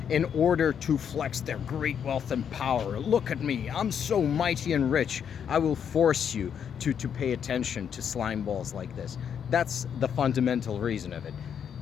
in order to flex their great wealth and power. Look at me, I'm so mighty and rich. I will force you to pay attention to slime balls like this. That's the fundamental reason of it.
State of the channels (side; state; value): right; quieter; 8.0 dB